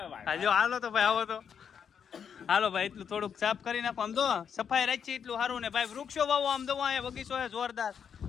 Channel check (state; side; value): quieter; right; 7.4 dB